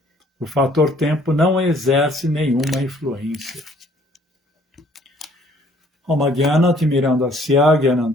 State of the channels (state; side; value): normal; both; correlation 0.60